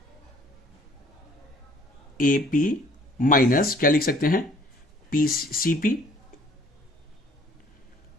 एपी माइनस क्या लिख सकते हैं, पी सीपी,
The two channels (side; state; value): both; normal; correlation 0.57